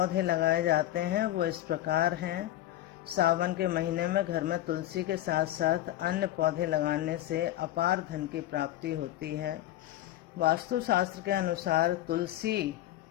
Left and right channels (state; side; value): quieter; right; 14.0 dB